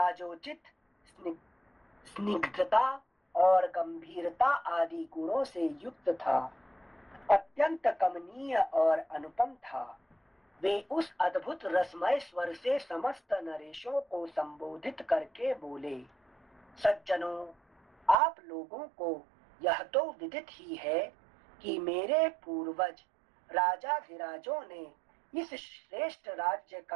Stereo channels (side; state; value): left; drops out; at 18.2 s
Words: स्निग्धता और गंभीरता आदि गुणों से युक्त था, अत्यंत कमनीय और अनुपम था। वे उस अद्भुत रसमय स्वर से समस्त नरेशों को संबोधित करके बोले, सज्जनों, आप लोगों को यह तो विदित ही है कि मेरे पूर्वज राजाधिराजों ने इस श्रेष्ठ राज्य